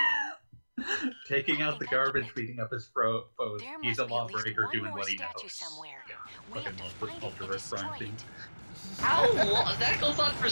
Taking out the garbage, beating up his foes. He's a lawbreaker doing what he knows. Somewhere. Fucking love the Ultraverse crime scene. How long? That goes on for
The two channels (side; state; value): both; inverted; correlation -1.00